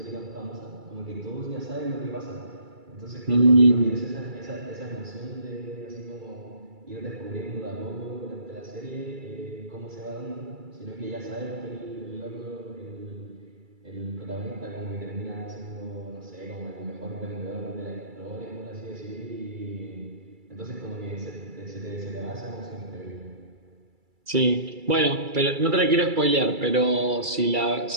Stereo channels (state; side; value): late; left; 2.3 ms